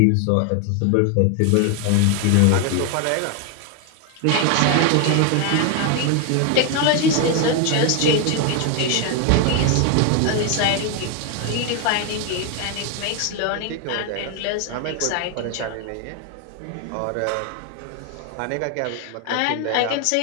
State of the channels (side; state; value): both; different; correlation 0.01